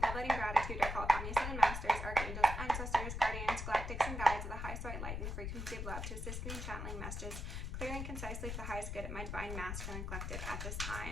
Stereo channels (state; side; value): noise; left; rumble, 4 dB below the sound